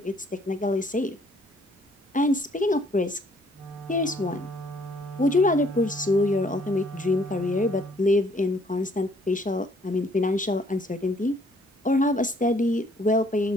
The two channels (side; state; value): both; normal; correlation 0.63